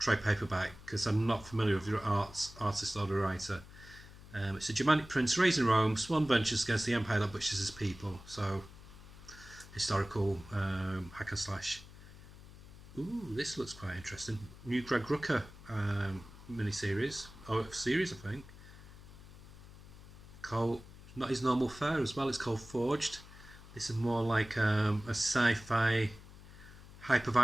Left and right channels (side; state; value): left; noise; hum, 18 dB below the sound